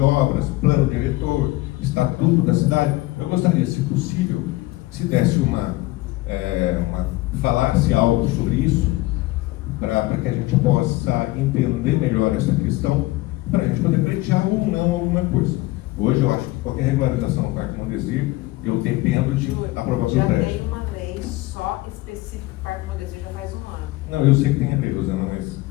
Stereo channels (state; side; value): quieter; right; 19.3 dB